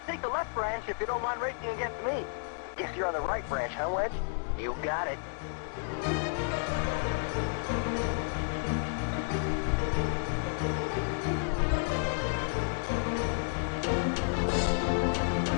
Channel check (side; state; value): right; silent; digital silence